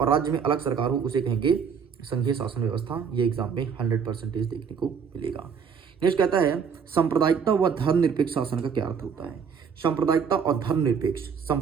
राज्य में अलग सरकार हो, उसे कहेंगे संघीय शासन व्यवस्था। ये एग्जाम में 100% देखने को मिलेगा। नेक्स्ट कहता है सांप्रदायिकता व धर्मनिरपेक्ष शासन का क्या अर्थ होता है। सांप्रदायिकता और धर्मनिरपेक्ष,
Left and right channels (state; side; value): quieter; left; 6.6 dB